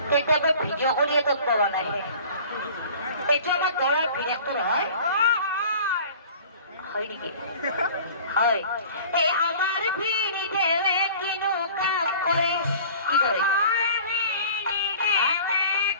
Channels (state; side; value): inverted; both; correlation -0.45